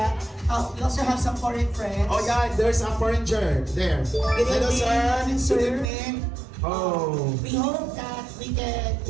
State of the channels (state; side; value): drops out; left; at 5.9 s